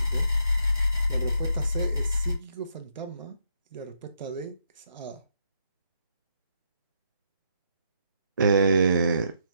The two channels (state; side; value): inverted; both; correlation -0.76